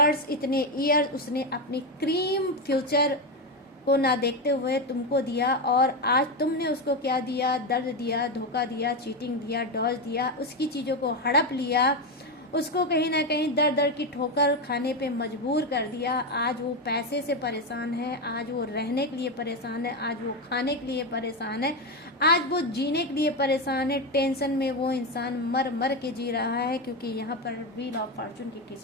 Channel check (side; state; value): both; normal; correlation 0.11